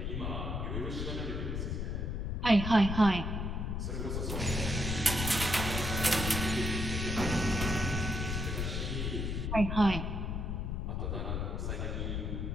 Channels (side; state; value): left; noise; rumble, 2 dB below the sound